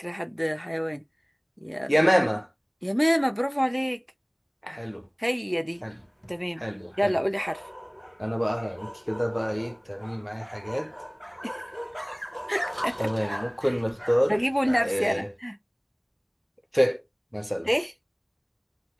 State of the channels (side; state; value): both; identical; correlation 1.00